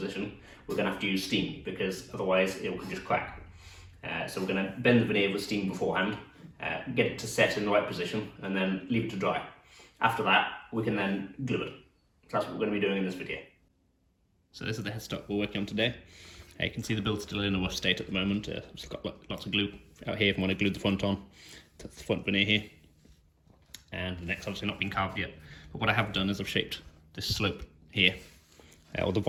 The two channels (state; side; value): identical; both; correlation 1.00